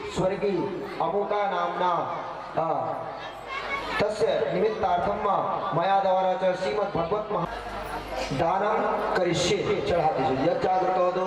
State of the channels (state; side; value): identical; both; correlation 1.00